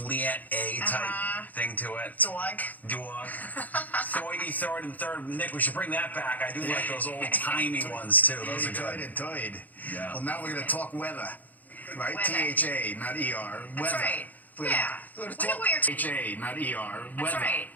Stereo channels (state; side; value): late; right; 0.081 ms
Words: A type thing to it. Dog. Thoidy, third, and third. Nick, we should bring that back. I do like those old timey ones too. Those are good. Toid. Yeah. Well, now we're going to talk weather, right? Weather. THA, not ER. That's Weather. right. We're Yeah. We're We going to know talk what you're THA, not ER. That's Weather. right.